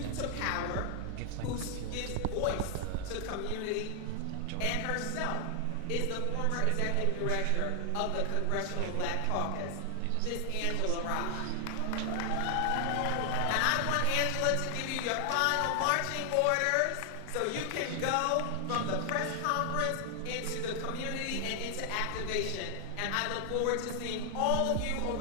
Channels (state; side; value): different; both; correlation 0.00